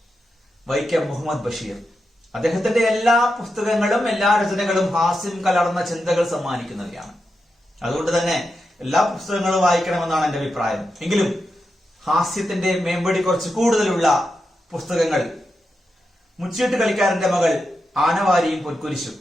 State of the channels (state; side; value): normal; both; correlation 0.88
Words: വൈക്കം മുഹമ്മദ് ബഷീർ. അദ്ദേഹത്തിന്റെ എല്ലാ പുസ്തകങ്ങളും എല്ലാ രചനകളും ഹാസ്യം കലർന്ന ചിന്തകൾ സമ്മാനിക്കുന്നവയാണ്. അതുകൊണ്ട് തന്നെ എല്ലാ പുസ്തകങ്ങളും വായിക്കണമെന്നാണ് എന്റെ അഭിപ്രായം. എങ്കിലും ഹാസ്യത്തിന്റെ മേമ്പടി കുറച്ച് കൂടുതലുള്ള പുസ്തകങ്ങൾ മുച്ചീട്ട് കളിക്കാരന്റെ മകൾ, ആനവാരിയും പൊൻകുരിശും.